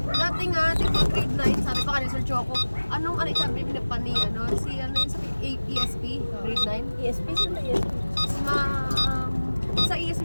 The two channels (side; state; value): both; inverted; correlation -1.00